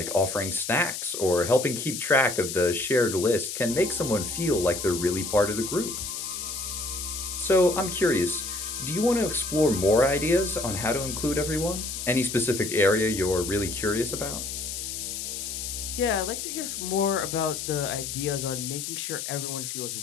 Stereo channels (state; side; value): noise; left; hiss, 5 dB below the sound